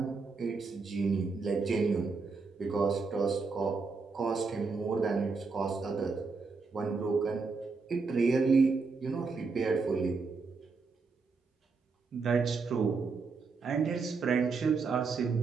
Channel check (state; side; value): quieter; left; 4.5 dB